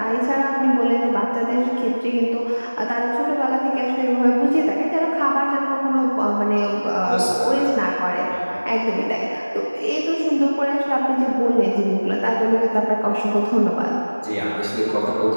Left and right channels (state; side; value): inverted; both; correlation -1.00